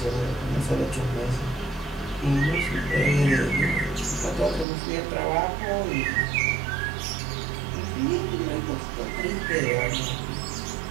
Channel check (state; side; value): drops out; left; at 4.7 s